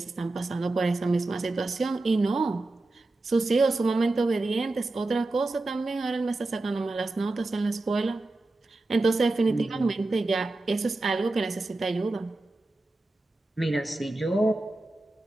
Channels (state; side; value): quieter; left; 3.0 dB